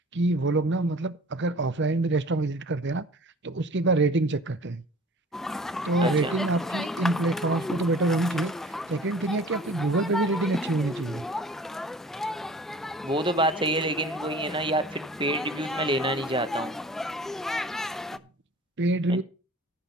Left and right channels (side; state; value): both; normal; correlation 0.46